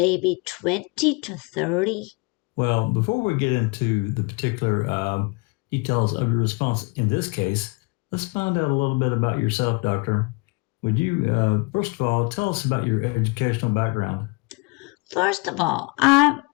20 to 30. Well, before we get into the particular details of your response in this case, let's find out a little bit about yourself, Doctor. Would you, first of all, tell us about your educational background? First of all, I'm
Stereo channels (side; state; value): right; quieter; 29.1 dB